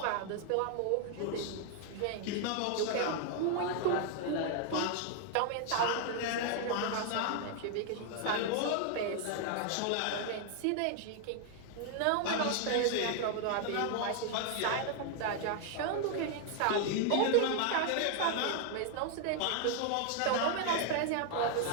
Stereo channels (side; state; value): both; different; correlation 0.00